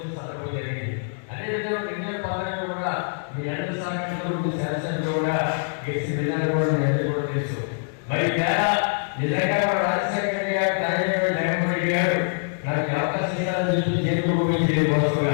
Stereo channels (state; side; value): silent; right; digital silence